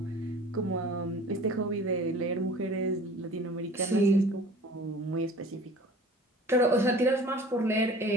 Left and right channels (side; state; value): both; normal; correlation 0.45